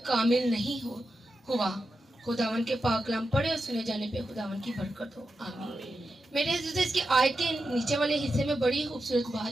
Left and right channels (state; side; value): normal; both; correlation 0.89